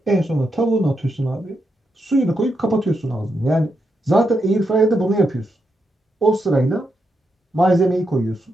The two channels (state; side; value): normal; both; correlation 0.83